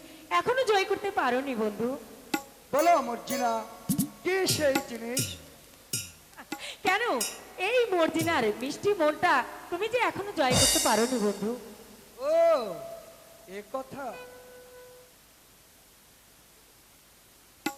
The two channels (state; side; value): identical; both; correlation 1.00